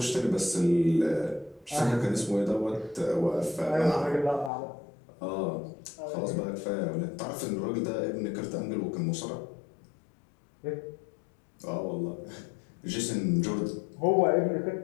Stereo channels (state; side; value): drops out; right; at 4.5 s